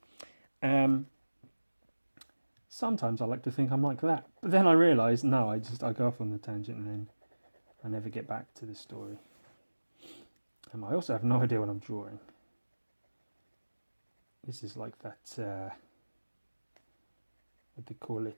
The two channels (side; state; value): both; inverted; correlation -1.00